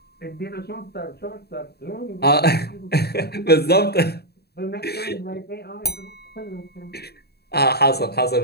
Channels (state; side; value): late; right; 0.47 ms